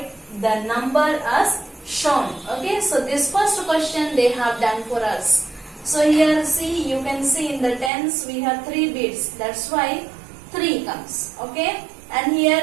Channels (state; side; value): drops out; left; at 7.9 s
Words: the number as shown. Okay, so this first question they have done for us. So here see, you can see in the tens we have 3 beads, that's why 3 comes. Okay, and here